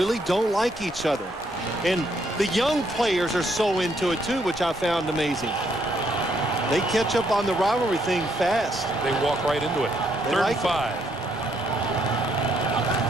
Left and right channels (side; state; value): both; normal; correlation 0.72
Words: don't like each other. And the young players are so into it, too, which I found amazing. They catch up on the rivalry thing fast. They walk right into it. 3rd and 5.